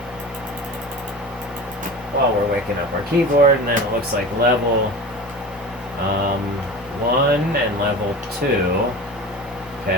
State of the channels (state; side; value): normal; both; correlation 0.33